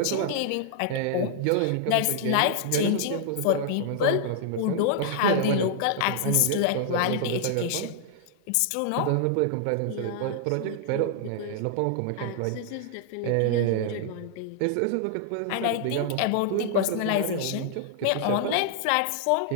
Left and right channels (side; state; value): both; different; correlation -0.01